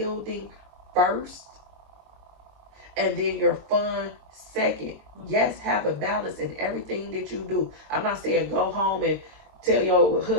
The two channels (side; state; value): left; late; 22 ms